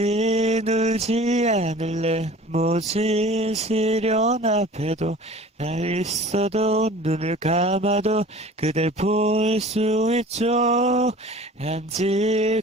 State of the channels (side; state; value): both; normal; correlation 0.43